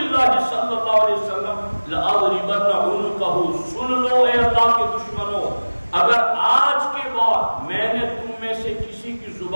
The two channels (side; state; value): both; inverted; correlation -1.00